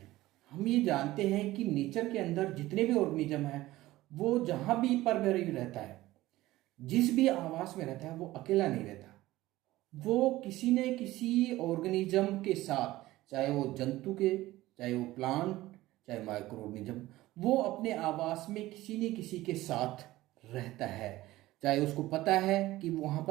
हम ये जानते हैं कि नेचर के अंदर जितने भी ऑर्गेनिज्म हैं वो जहां भी पर रहता है, जिस भी आवास में रहता है, वो अकेला नहीं रहता। वो किसी न किसी ऑर्गेनिज्म के साथ, चाहे वो जंतु के, चाहे वो प्लांट, चाहे माइक्रो ऑर्गेनिज्म, वो अपने आवास में किसी न किसी के साथ रहता है। चाहे उसको पता है कि वहां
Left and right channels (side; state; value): left; quieter; 17.0 dB